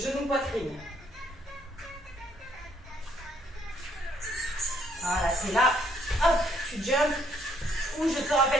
genou-poitrine. Voilà, c'est là. Hop, tu jumps. Ou je te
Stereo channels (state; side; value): normal; both; correlation 0.68